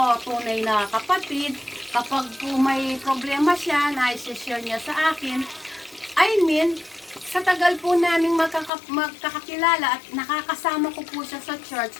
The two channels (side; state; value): right; drops out; at 8.7 s